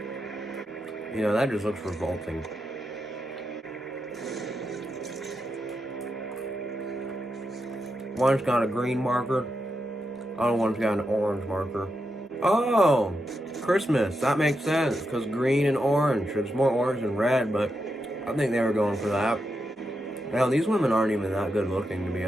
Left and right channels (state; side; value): normal; both; correlation 0.86